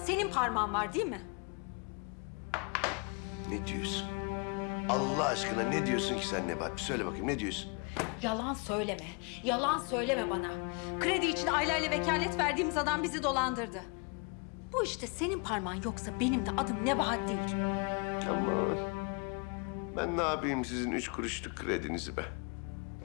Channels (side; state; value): right; quieter; 34.0 dB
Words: parmağın var değil mi? Ne diyorsun? Allah aşkına ne diyorsun ki sen Nebahat? Bir söyle bakayım ne diyorsun? Yalan söyleme. Yalan söyleme bana. Kredi için aileyle vekalet verdiğimiz adam bizi dolandırdı. Bu işte senin parmağın yoksa benim de adım Nebahat değil. Aman. Ben ne yapayım sizin 3 kuruşluk kredinizi be?